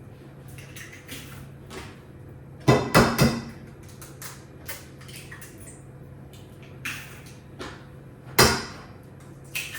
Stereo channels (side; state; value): both; identical; correlation 1.00